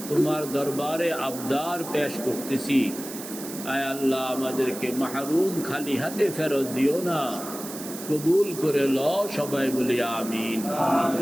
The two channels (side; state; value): right; noise; hiss, 11 dB below the sound